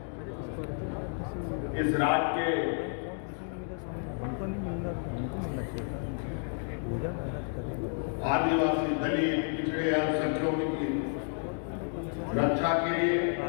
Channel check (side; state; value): right; silent; 57 dB below the other